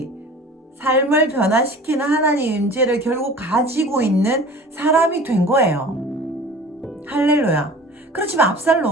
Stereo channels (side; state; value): both; normal; correlation 0.42